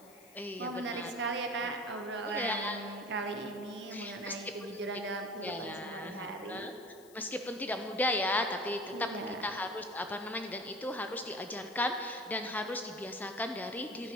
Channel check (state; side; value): noise; left; hiss, 23 dB below the sound